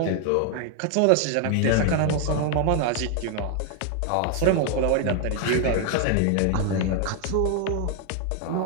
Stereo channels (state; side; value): different; both; correlation 0.01